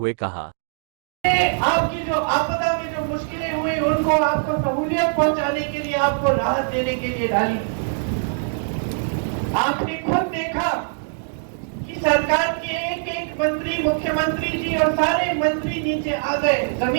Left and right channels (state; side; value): silent; left; digital silence